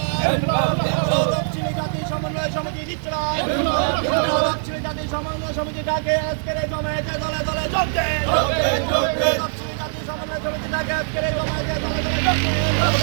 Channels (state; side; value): silent; left; digital silence